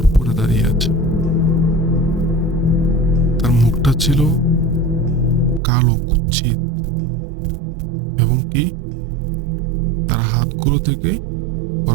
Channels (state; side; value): drops out; left; at 5.6 s